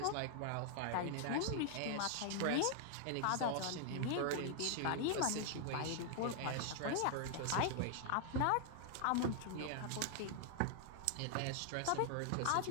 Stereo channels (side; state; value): both; different; correlation 0.00